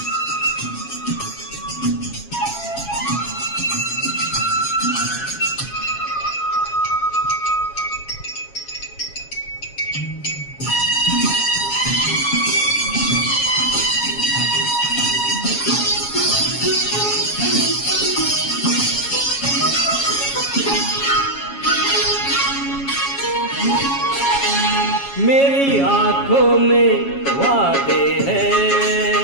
मेरी आँखों में वादे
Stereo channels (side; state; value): right; late; 7.3 ms